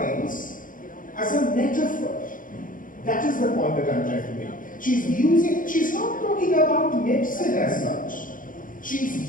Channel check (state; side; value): late; right; 0.39 ms